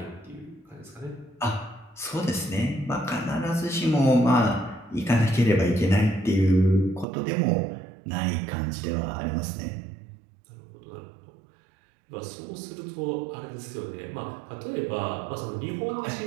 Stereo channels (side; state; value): left; drops out; at 7.1 s